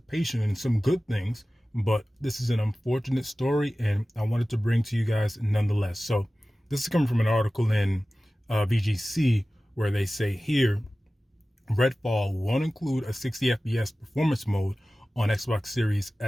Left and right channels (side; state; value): both; normal; correlation 0.96